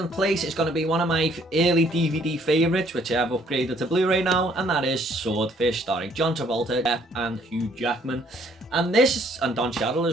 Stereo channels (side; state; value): both; normal; correlation 0.63